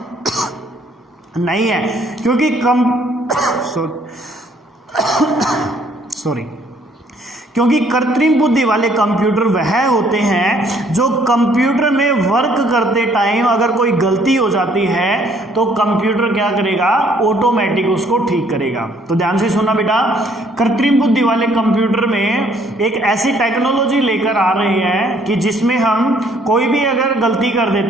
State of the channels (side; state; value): both; normal; correlation 0.63